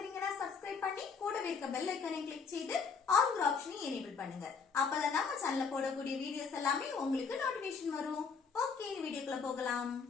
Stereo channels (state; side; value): quieter; right; 5.5 dB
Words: சப்ஸ்கிரைப் பண்ணி கூடவே இருக்க பெல் ஐகானை கிளிக் செய்து ஆல் ஆப்ஷனை எனேபிள் பண்ணுங்க. அப்பதான் நம்ம சேனல்ல போடக்கூடிய வீடியோஸ் எல்லாமே உங்களுக்கு நோட்டிபிகேஷன் வரும். ஓகே, இந்த வீடியோக்குள்ள போகலாம்.